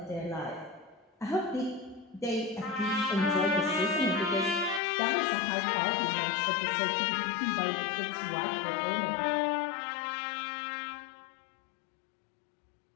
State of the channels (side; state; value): right; drops out; at 4.8 s